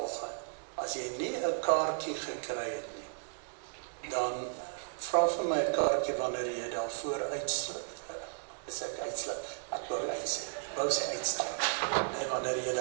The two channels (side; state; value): left; silent; 55 dB below the other